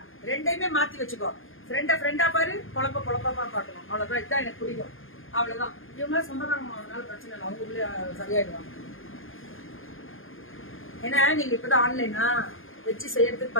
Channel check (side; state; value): right; late; 0.59 ms